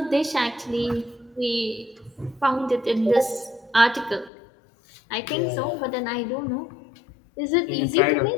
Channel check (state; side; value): drops out; right; at 4.3 s